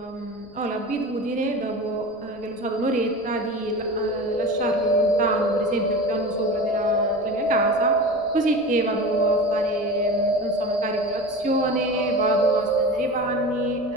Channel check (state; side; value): noise; left; rumble, 28 dB below the sound